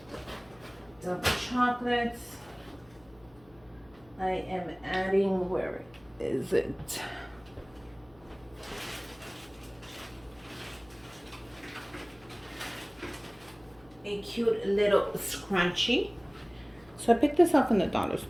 Dove chocolates. I am adding, where is it? a cute little scrunchie. So I picked this up in the dollar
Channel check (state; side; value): noise; left; hum, 27 dB below the sound